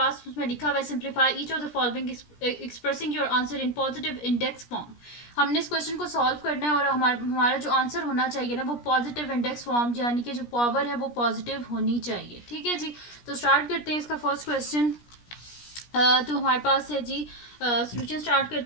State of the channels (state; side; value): late; right; 17 ms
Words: उसमें लिखा हुआ है simplify each of the following expressing your answer in positive index form. हमने इस क्वेश्चन को सॉल्व करना है और हमारा जो आंसर होना चाहिए ना वो पॉजिटिव इंडेक्स फॉर्म यानी कि जो पावर है वो पॉजिटिव होनी चाहिए। ठीक है जी, तो स्टार्ट करते हैं इसका फर्स्ट क्वेश्चन। तो हमारे पास है जी सोल्यूशन स्टार्ट